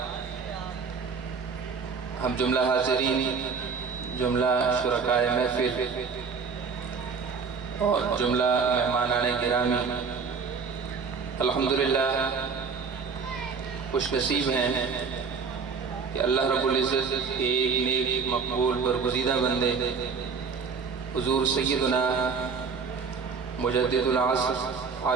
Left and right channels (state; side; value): quieter; left; 5.4 dB